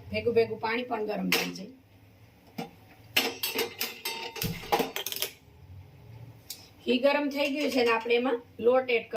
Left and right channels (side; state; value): both; identical; correlation 1.00